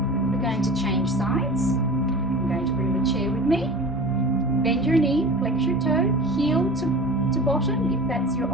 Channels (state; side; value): normal; both; correlation 0.36